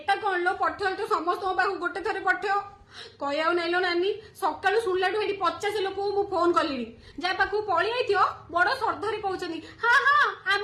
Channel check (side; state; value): both; identical; correlation 1.00